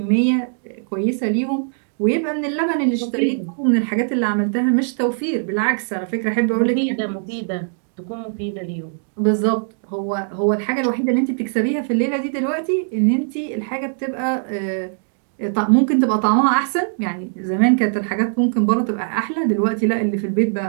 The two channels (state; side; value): silent; left; digital silence